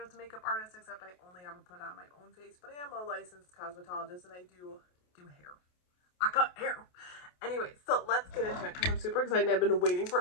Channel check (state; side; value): late; right; 28 ms